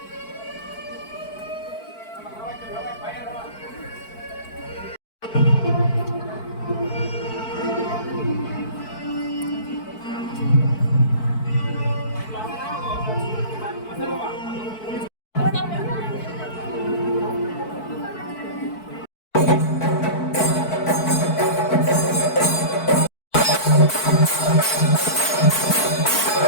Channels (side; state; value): right; late; 4.5 ms